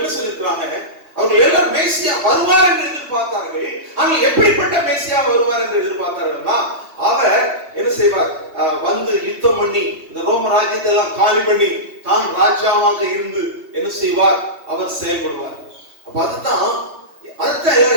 சொல்லிருக்காங்க? அவங்க எல்லாரும் மேசியா வருவார் என்று எதிர்பார்த்தார்கள். ஆனால் எப்படிப்பட்ட மேசியா வருவார் என்று எதிர்பார்த்தார்கள்னா, அவர் என்ன செய்வார்? வந்து யுத்தம் பண்ணி இந்த ரோம ராஜ்யத்தை எல்லாம் காலி பண்ணி தான் ராஜாவாக இருந்து என்ன செய்வார்? அவர் செயல்படுவார். அப்ப அதுதான்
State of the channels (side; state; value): left; late; 3.2 ms